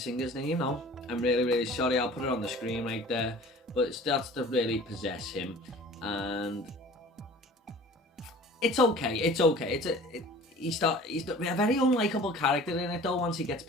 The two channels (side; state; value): both; normal; correlation 0.45